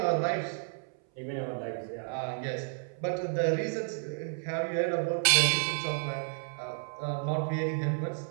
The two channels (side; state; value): left; silent; 57 dB below the other